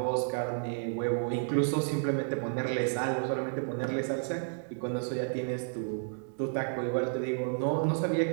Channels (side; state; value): left; silent; digital silence